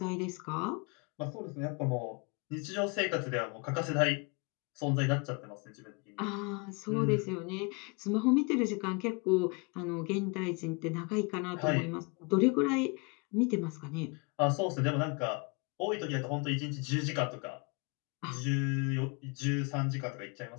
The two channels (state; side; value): quieter; right; 31.1 dB